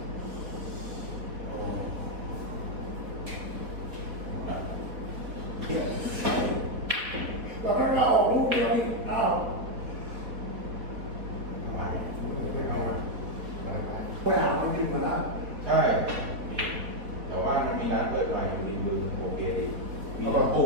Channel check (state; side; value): late; left; 4.1 ms